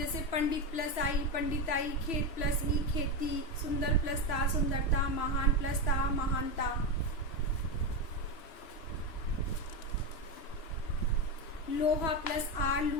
पंडित प्लस आई पंडिताई, खेत प्लस ई खेती, सुंदर प्लस ता सुंदरता, महान प्लस ता महानता। लोहा प्लस आर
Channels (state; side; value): late; right; 3.0 ms